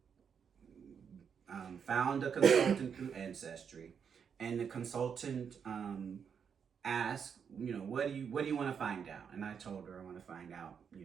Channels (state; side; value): quieter; left; 7.0 dB